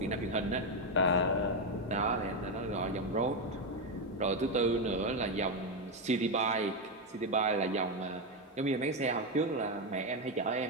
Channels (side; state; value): both; normal; correlation 0.07